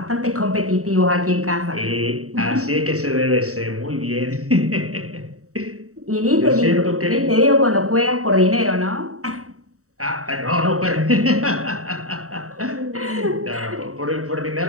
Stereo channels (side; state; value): left; late; 0.65 ms